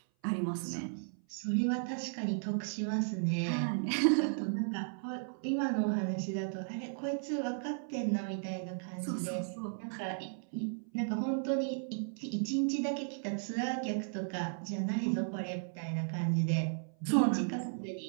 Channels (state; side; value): silent; left; 54 dB below the other